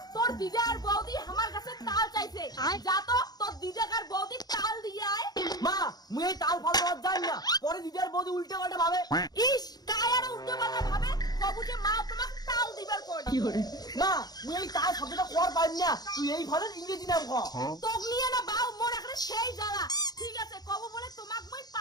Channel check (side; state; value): right; late; 0.19 ms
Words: তোর দিদা আর বৌদি আমার কাছে তাল চাইছে, যা তো তোর দিদা আর বৌদি তাল দিয়ে আয়। মা মুই এই তাল ফাল দেওয়ার যাই না, পরে দিদি আর বৌদি উল্টে পাল্টে ভাবে। ইস কায়ার উল্টো পাল্টা ভাবে, বাবু যে মা তোমাকে তাল দিবার কোন। মা মুই এই তাল শব্দটা কর পারি না, তুই এই ফলের ইংরেজি নাম ক। তোক নিয়ে না বাউ মোর এখানে সেই জ্বালা। ঠিক আছে কব বলে তোমাক মই